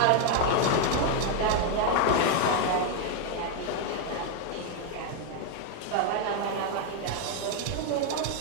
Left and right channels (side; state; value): both; different; correlation 0.01